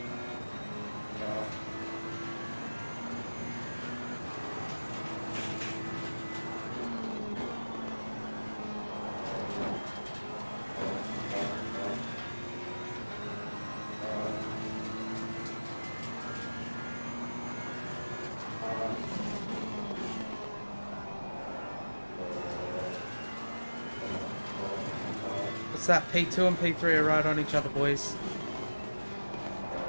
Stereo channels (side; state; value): both; inverted; correlation -1.00